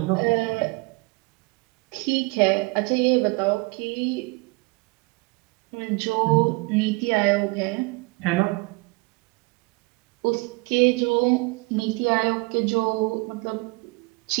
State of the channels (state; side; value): quieter; left; 26.5 dB